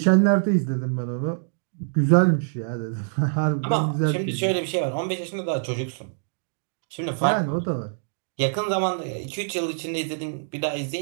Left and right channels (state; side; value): silent; left; digital silence